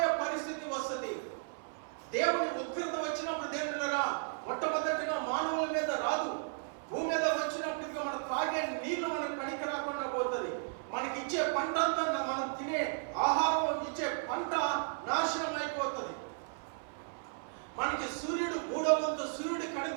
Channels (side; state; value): left; silent; 55 dB below the other